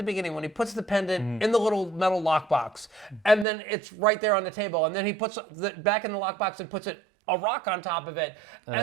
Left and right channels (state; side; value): drops out; left; at 3.5 s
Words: beginning when he puts the pendant in the little metal lockbox, and then it's right there on the table, and then he puts it back in the lockbox and puts a rock on top of it,